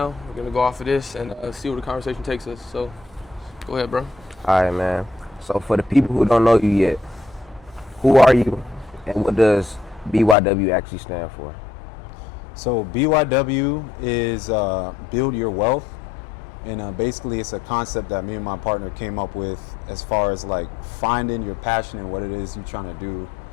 We're going to go off of this and see where the conversation takes us. So, go ahead, bro. All right, man. So for the people who don't know you yet, who are you and what does BYW actually stand for? So BYW is Build Your Wealth. And basically it's a concept that me and my partner came up with as far as like finding your passion and what it is you're trying to do,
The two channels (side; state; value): right; drops out; at 10.4 s